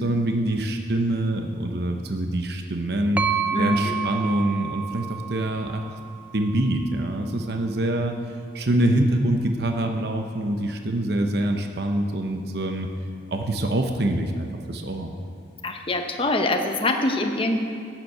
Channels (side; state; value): both; normal; correlation 0.67